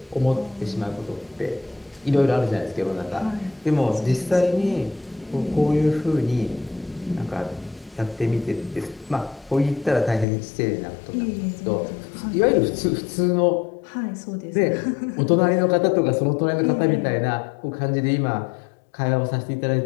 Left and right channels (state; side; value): drops out; right; at 10.2 s